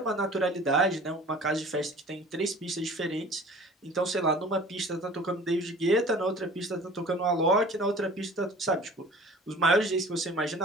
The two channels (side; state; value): both; normal; correlation 0.45